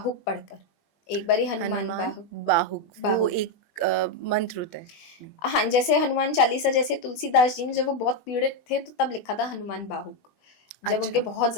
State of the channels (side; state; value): right; late; 20 ms